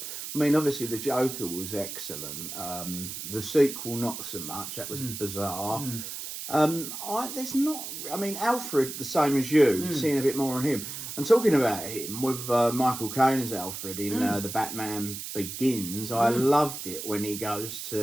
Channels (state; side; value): noise; right; hiss, 8 dB below the sound